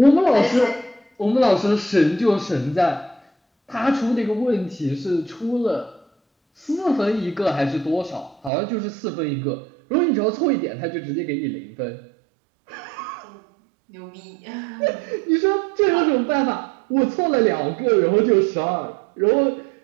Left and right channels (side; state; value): left; drops out; at 8.5 s